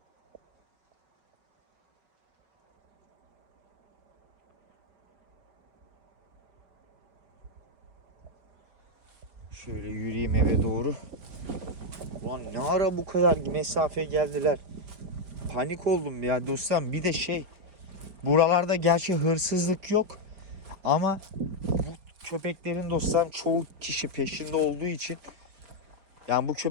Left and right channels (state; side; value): late; left; 5.0 ms